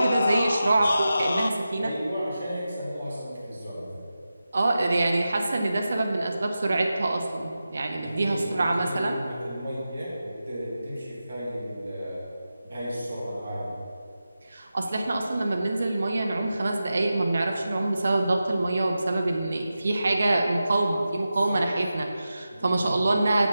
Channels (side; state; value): both; inverted; correlation -0.92